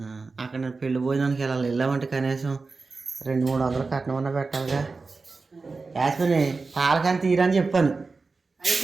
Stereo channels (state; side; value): quieter; left; 4.1 dB